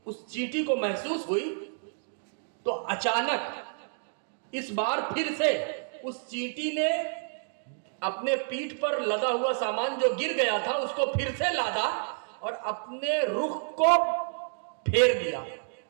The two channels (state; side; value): silent; left; digital silence